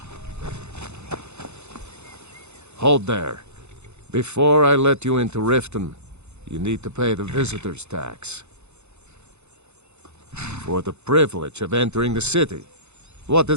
Hold there. Before I let you into Riften, you need to pay the visitor's tax. For the privilege of entering the city. What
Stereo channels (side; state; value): left; late; 0.81 ms